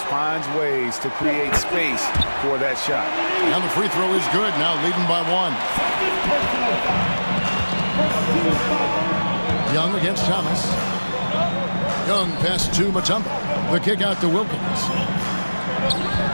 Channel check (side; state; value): both; inverted; correlation -1.00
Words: finds ways to create space for that shot. And the free throw is good, now leading by 1. Young against Thomas. Young pass to Mutombo. The kick out to Wilkins.